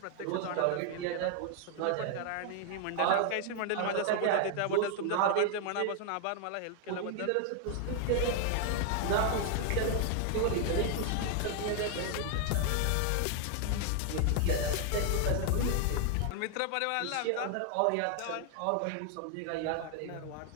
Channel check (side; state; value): both; different; correlation 0.00